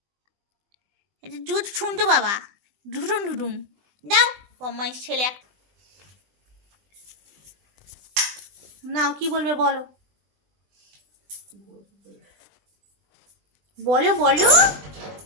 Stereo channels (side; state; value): left; late; 20 ms